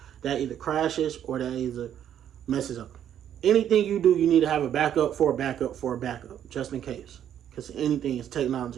that either crashes or that either messes up. Anything you do, you need to have a backup for a backup for a backup, just in case. Because anything is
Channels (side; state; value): left; quieter; 10.0 dB